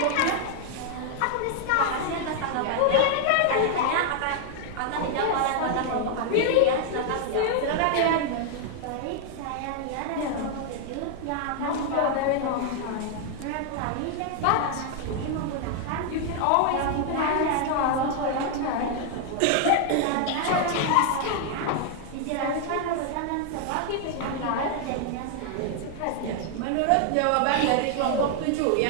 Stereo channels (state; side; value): different; both; correlation 0.00